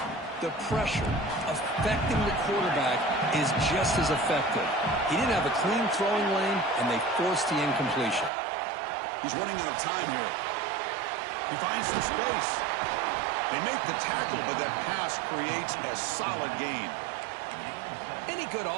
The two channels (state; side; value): drops out; left; at 8.3 s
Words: the pressure, affecting the quarterback is just as effective. He didn't have a clean throwing lane, and they forced the incompletion. He's running out of time here. He finds some space. They make the tackle, but that pass creates a solid gain. Any good